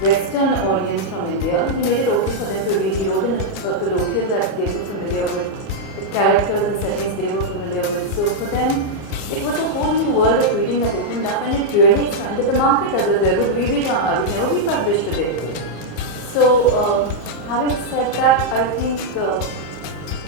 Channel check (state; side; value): late; right; 27 ms